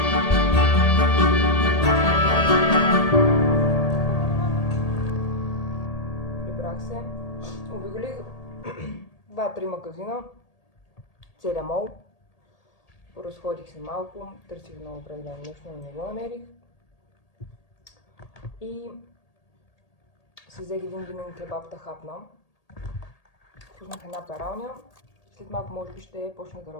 Прибрах се. Обиколих 2-3 магазина. Целия мол. Поразходих се малко. Търсих много определено нещо, но не го намерих. И си взех един винен кебаб да хапна. Пуснах една пералня. След малко може би ще почна да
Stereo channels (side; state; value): right; late; 1.8 ms